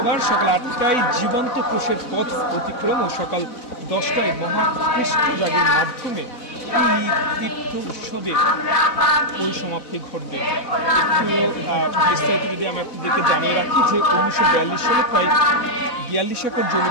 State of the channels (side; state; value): right; late; 4.0 ms